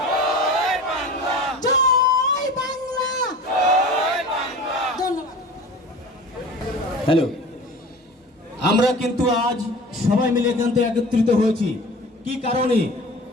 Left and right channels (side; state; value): both; normal; correlation 0.38